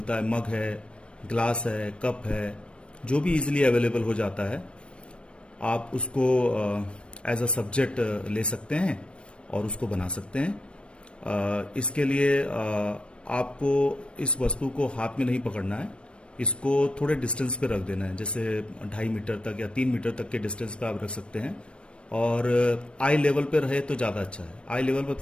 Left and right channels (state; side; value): late; right; 0.058 ms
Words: है, मग है, ग्लास है, कप है, जो भी इजीली अवेलेबल हो जाता है, आप उसको एज अ सब्जेक्ट ले सकते हैं और उसको बना सकते हैं। इसके लिए आपको इस वस्तु को हाथ में नहीं पकड़ना है, इसको थोड़े डिस्टेंस पे रख देना है। जैसे 2.5 मीटर तक या 3 मीटर तक के डिस्टेंस पे आप रख सकते हैं। और आई लेवल पे रहे तो ज़्यादा अच्छा है। आई लेवल